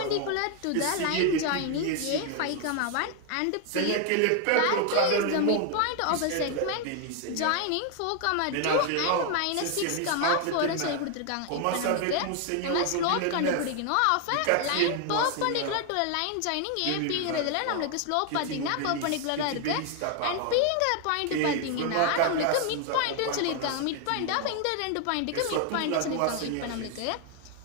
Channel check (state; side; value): different; both; correlation 0.00